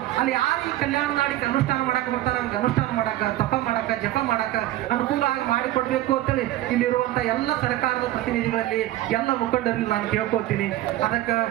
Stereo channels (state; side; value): quieter; left; 14.9 dB